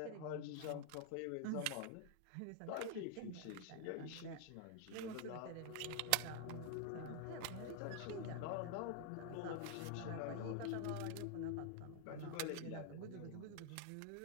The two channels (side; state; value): both; different; correlation 0.00